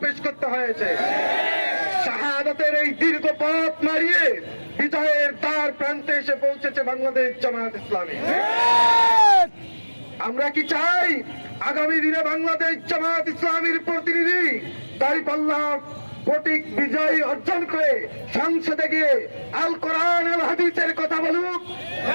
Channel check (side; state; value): both; inverted; correlation -1.00